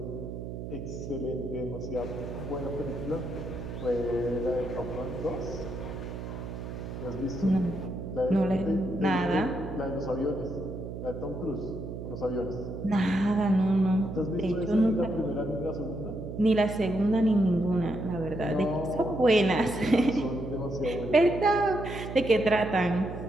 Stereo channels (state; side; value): noise; right; hum, 8 dB below the sound